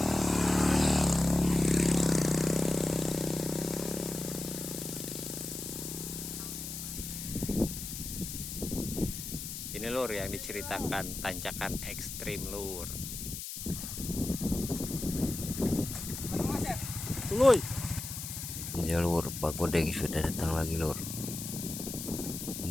Ini lur yang diceritakan tanjakan ekstrim lur. Tuluy. Ya lur, Pak Godeng sudah datang lagi lur.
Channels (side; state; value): left; noise; hiss, 7 dB below the sound